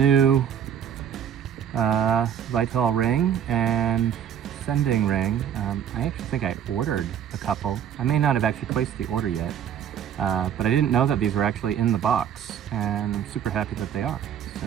Vitol ring and sending ring. I actually think I ordered a couple. I may not have actually placed the order yet, but I didn't know that these were actually in the box, and I'm super happy that they are.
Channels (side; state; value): left; quieter; 9.2 dB